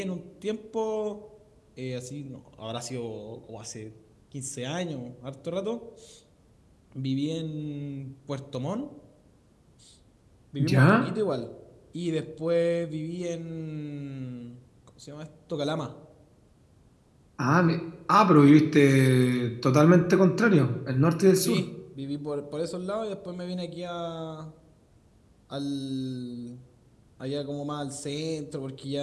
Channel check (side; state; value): both; identical; correlation 1.00